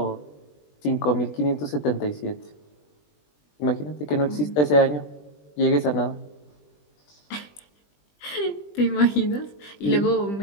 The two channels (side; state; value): right; late; 20 ms